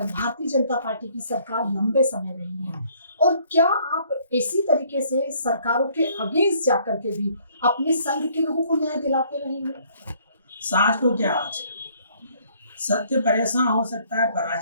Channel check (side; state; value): both; inverted; correlation -0.62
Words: जनता पार्टी की सरकार लंबे समय रही है, और क्या आप इसी तरीके से सरकारों के अगेंस्ट जाकर के भी अपने संघ के लोगों को न्याय दिलाते रहेंगे? साँझ को क्या आज सत्य परेशान हो सकता है,